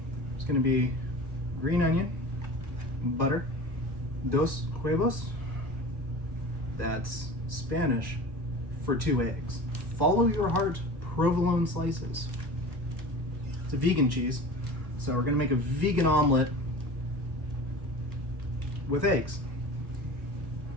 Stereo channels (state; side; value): late; left; 1.1 ms